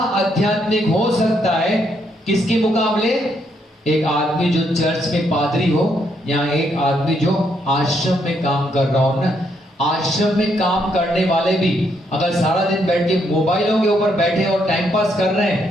हो सकता है किसके मुकाबले, एक आदमी जो चर्च में पादरी हो या एक आदमी जो आश्रम में काम कर रहा हो ना। आश्रम में काम करने वाले भी अगर सारा दिन बैठ के मोबाइलों के ऊपर बैठे और टाइम पास कर रहे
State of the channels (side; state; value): both; normal; correlation 0.75